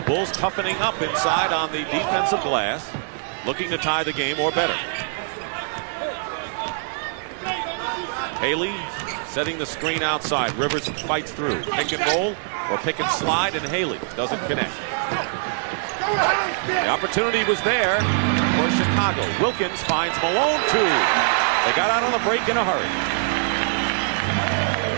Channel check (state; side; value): silent; left; digital silence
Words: Bulls toughening up inside on the defensive glass, looking to tie the game or better. Haley setting the screen outside. Rivers fights through. Pick and roll or pick and slide, and Haley doesn't connect. The opportunity was there for Chicago. Wilkins finds Malone too. They got out on the break in a hurry.